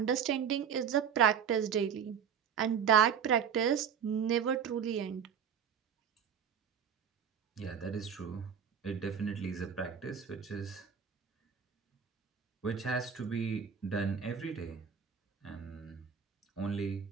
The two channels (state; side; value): quieter; left; 7.6 dB